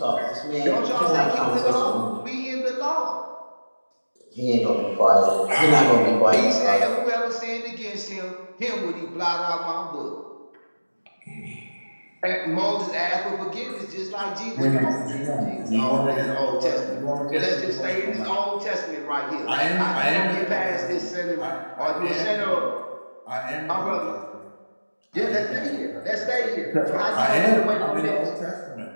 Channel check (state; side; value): inverted; both; correlation -1.00